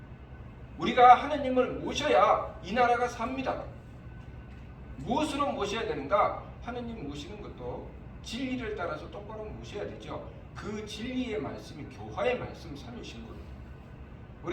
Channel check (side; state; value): both; identical; correlation 1.00